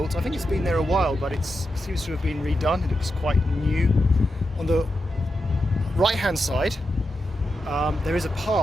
I think it's been there a while, but it seems to have been redone. It looks quite new. On the right hand side there is a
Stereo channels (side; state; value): both; normal; correlation 0.87